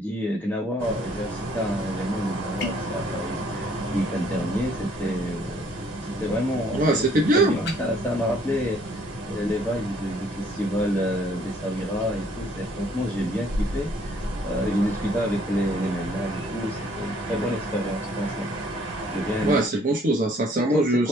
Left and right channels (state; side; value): normal; both; correlation 0.62